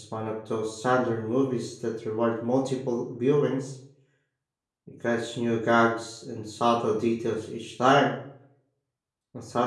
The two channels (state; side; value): identical; both; correlation 1.00